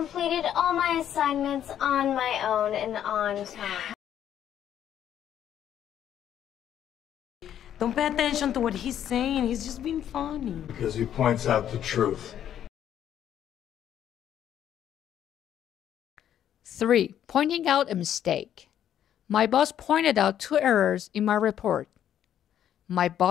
all my assignments on my own and on time. Don't pay attention to what he's saying. He's just being funny. Because he points out the truth. 3. Pointing out a mistake. My boss pointed out 2 errors in my report. My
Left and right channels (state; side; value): quieter; right; 10.3 dB